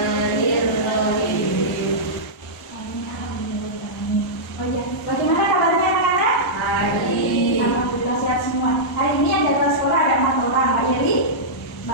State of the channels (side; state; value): both; normal; correlation -0.12